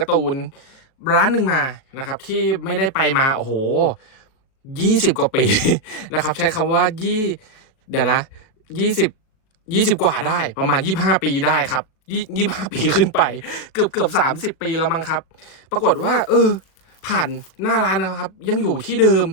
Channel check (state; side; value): late; right; 38 ms